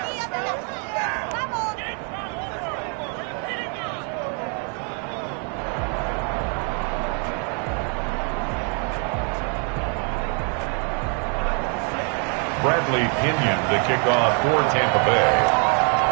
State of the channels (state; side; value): quieter; left; 39.6 dB